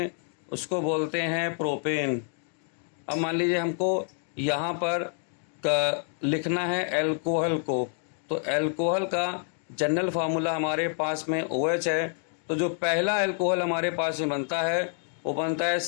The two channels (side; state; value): right; silent; 59 dB below the other